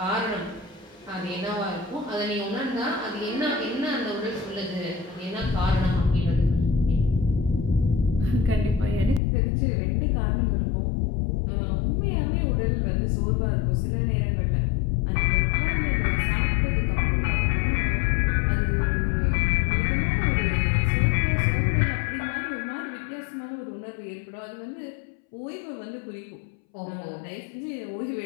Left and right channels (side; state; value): right; drops out; at 9.2 s